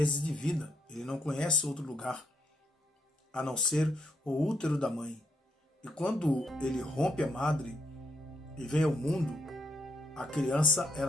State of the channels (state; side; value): normal; both; correlation 0.76